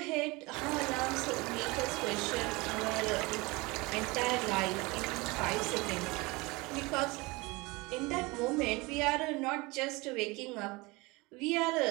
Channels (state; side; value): quieter; left; 24.3 dB